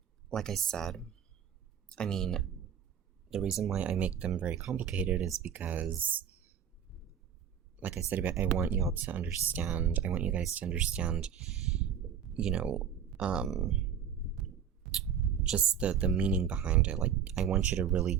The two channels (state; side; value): quieter; left; 8.3 dB